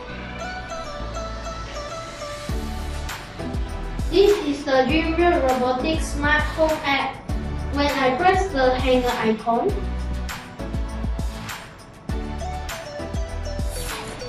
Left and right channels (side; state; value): both; identical; correlation 1.00